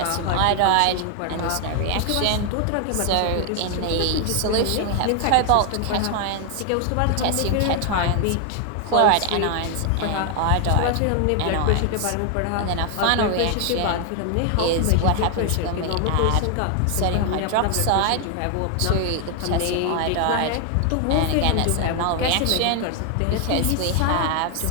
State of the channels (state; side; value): different; both; correlation 0.00